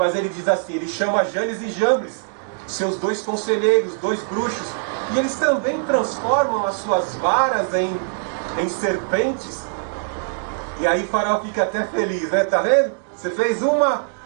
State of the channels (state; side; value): silent; left; digital silence